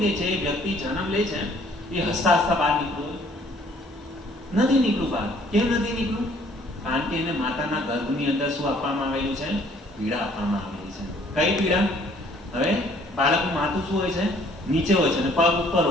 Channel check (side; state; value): both; normal; correlation 0.60